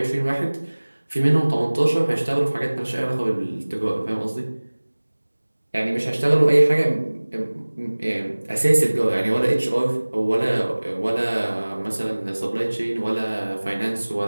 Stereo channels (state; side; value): inverted; both; correlation -1.00